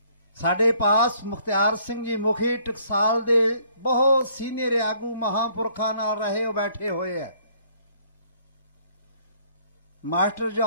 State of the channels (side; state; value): both; inverted; correlation -0.62